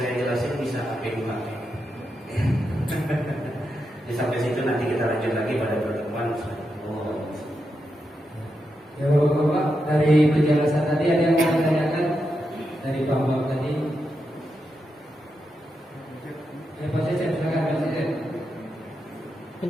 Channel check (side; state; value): both; normal; correlation 0.86